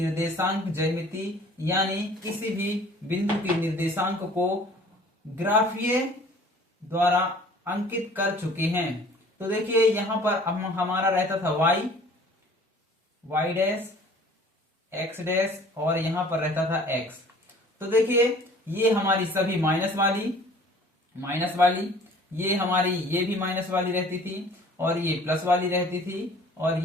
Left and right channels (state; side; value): normal; both; correlation 0.50